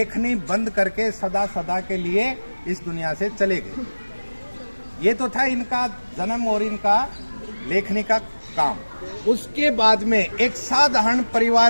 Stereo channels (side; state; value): both; inverted; correlation -1.00